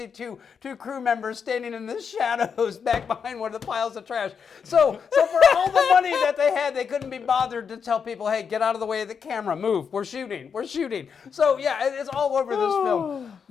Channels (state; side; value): quieter; right; 6.5 dB